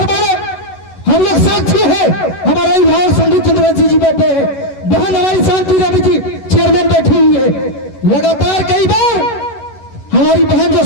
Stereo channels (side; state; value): right; late; 11 ms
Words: ने हम लोग साक्षी है, हमारा अभिभावक संदीप चंद्रवंशी जी बैठे हैं, बहन हमारी शांति रवि जी चेयरमैन बैठी हुई है। लगातार कई बार हमारी बहन जो